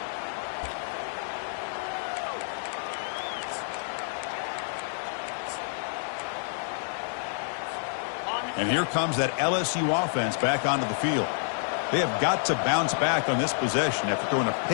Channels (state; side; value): silent; right; digital silence